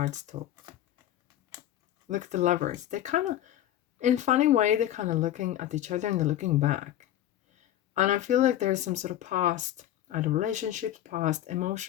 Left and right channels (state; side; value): quieter; right; 12.4 dB